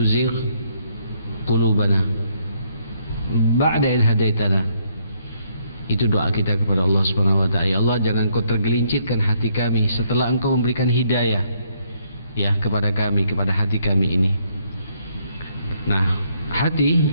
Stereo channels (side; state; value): both; inverted; correlation -0.71